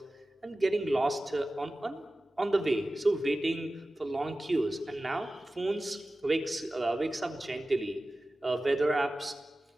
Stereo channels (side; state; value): both; normal; correlation 0.95